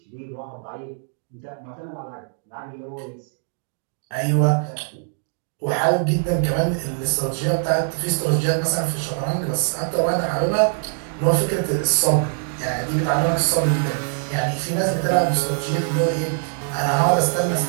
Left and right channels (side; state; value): left; silent; 64 dB below the other